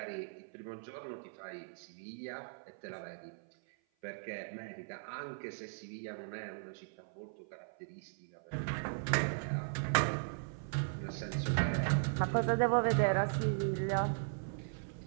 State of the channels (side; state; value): left; silent; 52 dB below the other